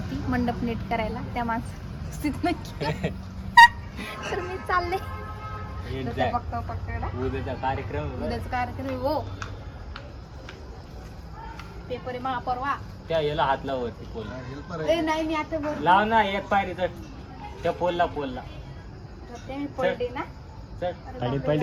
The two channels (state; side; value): identical; both; correlation 1.00